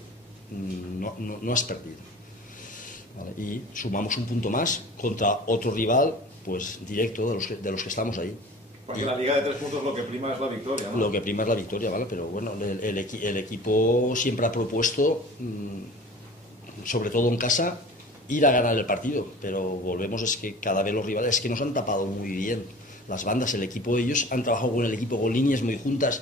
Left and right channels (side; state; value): both; normal; correlation 0.42